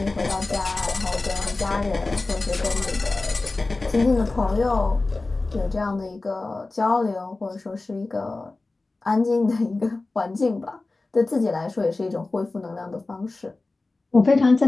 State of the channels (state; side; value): quieter; right; 3.3 dB